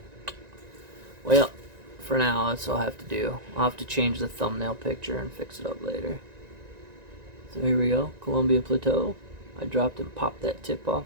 Well, for now, that's all I have to do. I'll have to change the thumbnail picture and fix it up later. So here we go, Colombia Plateau. I dropped and popped that tip off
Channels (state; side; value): late; left; 1.9 ms